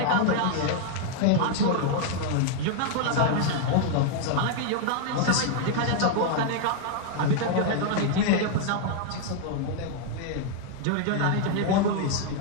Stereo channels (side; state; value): both; different; correlation 0.00